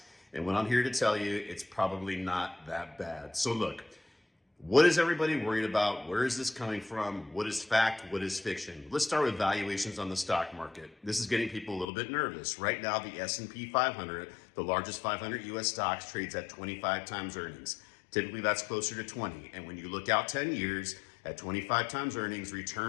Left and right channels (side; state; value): right; drops out; at 11.9 s